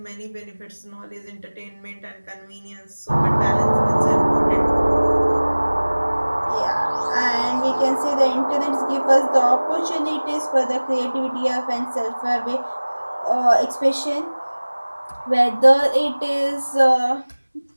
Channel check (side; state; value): both; inverted; correlation -1.00